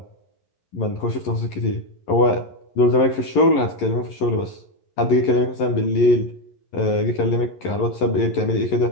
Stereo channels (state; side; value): late; right; 11 ms